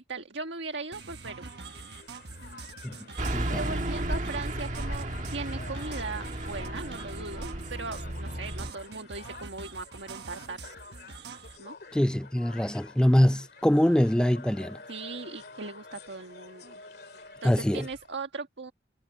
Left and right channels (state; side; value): normal; both; correlation 0.84